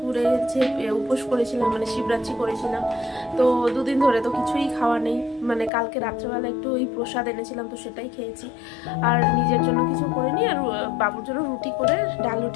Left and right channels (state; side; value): drops out; right; at 5.7 s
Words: যে উপোস করেছিলাম, মানে শিবরাত্রি করেছিলাম। তো দুদিন ধরে তো কিছুই খাওয়া নেই, মানে কালকে রাত্রেবেলা একটু ওই প্রসাদ এনেছিলাম, তো সেটাই খেয়েছি। আর নিজের জন্য কিছু করিনি, আর বাবুর জন্য ডাল